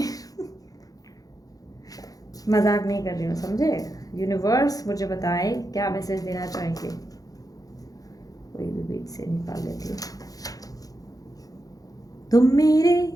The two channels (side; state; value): right; late; 0.17 ms